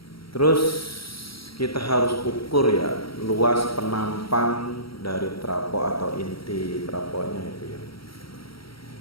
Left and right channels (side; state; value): right; late; 0.75 ms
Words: Terus kita harus ukur ya luas penampang dari trapo atau inti traponya itu ya.